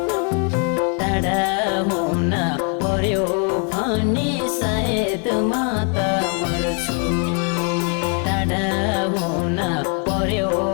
टाढा हुन पर्यो भने सायद म त मर्छु टाढा हुन पर्यो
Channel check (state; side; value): quieter; right; 39.7 dB